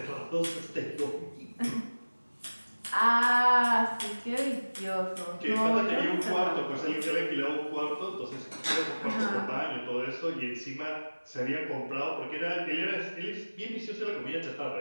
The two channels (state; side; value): inverted; both; correlation -1.00